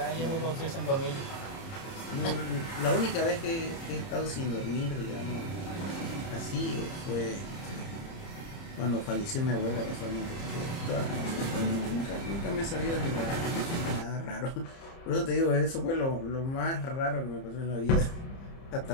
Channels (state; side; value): late; right; 30 ms